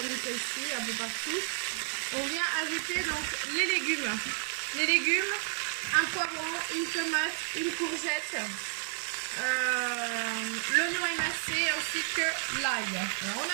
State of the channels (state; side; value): silent; left; 57 dB below the other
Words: celle-ci, un peu partout, on vient ajouter donc les légumes. Les légumes, un poivron, une tomate, une courgette, l'oignon émincé ainsi que l'ail. Alors on